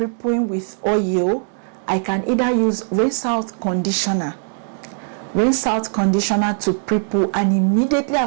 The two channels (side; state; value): left; silent; digital silence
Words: with oil, I can either use rinse out conditioner to pre-poo, and immediately